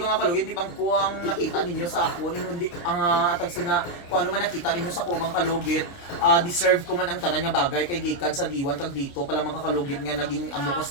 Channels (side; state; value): right; late; 29 ms